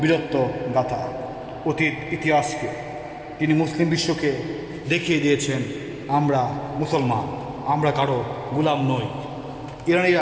বীরত্ব গাথা, অতীত ইতিহাসকে। তিনি মুসলিম বিশ্বকে দেখিয়ে দিয়েছেন আমরা মুসলমান, আমরা কারো গোলাম নই।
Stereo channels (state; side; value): identical; both; correlation 1.00